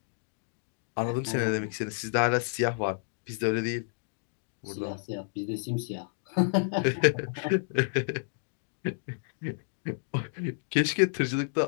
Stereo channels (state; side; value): silent; right; digital silence